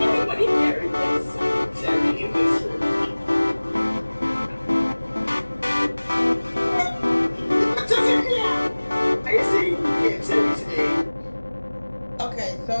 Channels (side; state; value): both; inverted; correlation -1.00